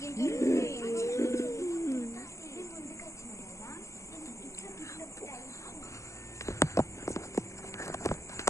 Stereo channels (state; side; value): late; right; 0.14 ms